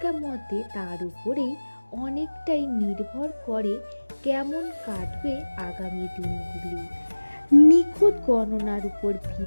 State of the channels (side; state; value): both; inverted; correlation -1.00